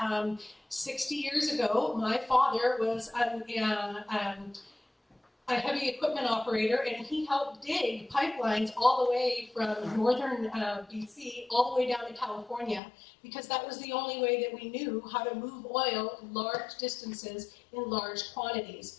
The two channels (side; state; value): right; drops out; at 12.8 s